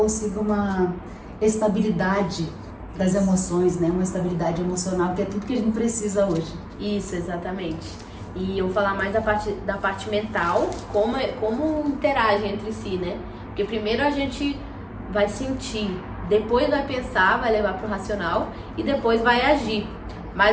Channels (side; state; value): both; identical; correlation 1.00